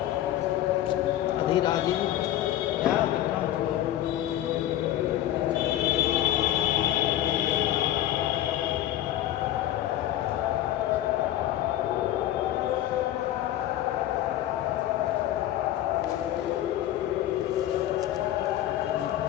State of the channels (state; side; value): quieter; right; 13.1 dB